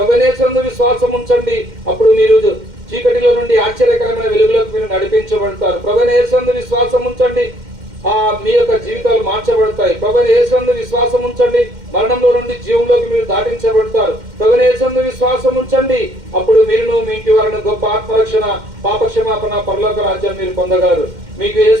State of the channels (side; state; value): left; late; 2.1 ms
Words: విశ్వాసం ఉంచండి. అప్పుడు మీరు చీకటిలో నుండి ఆశ్చర్యకరమైన వెలుగులోకి మీరు నడిపించబడతారు. ప్రభునేశ్వరందు విశ్వాసం ఉంచండి, మీ యొక్క జీవితాలు మార్చబడతాయి. ప్రభుని యేసునందు విశ్వాసం ఉంచండి, మరణంలో నుండి జీవంలోకి మీరు దాటించబడతారు. ప్రభుని యేసునందు విశ్వాసం ఉంచండి, అప్పుడు మీరును మీ ఇంటి వారిని గొప్ప ఆత్మరక్షణ, పాపక్షమాపణ, పరలోక రాజ్యం మీరు పొందగలరు. మీకు